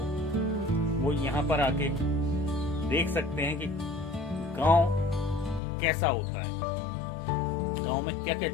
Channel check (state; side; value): drops out; right; at 5.6 s